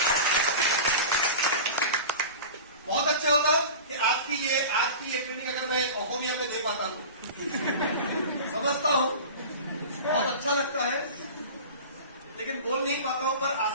बहुत अच्छा होता कि आज की ये ट्रेनिंग अगर मैं ओहोमिया में दे पाता हूं, समझता हूं, बहुत अच्छा लगता है, लेकिन बोल नहीं पाता हूं। पर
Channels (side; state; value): both; inverted; correlation -0.34